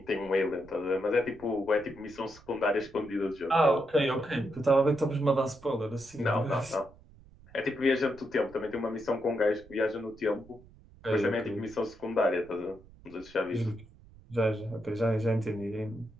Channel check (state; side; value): noise; right; rumble, 23 dB below the sound